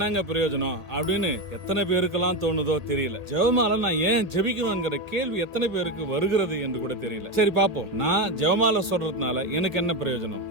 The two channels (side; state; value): left; late; 1.8 ms